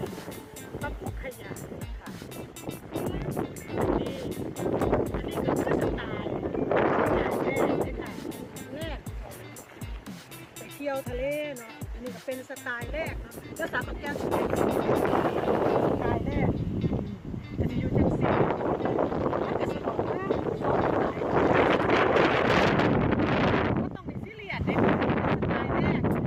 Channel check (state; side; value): identical; both; correlation 1.00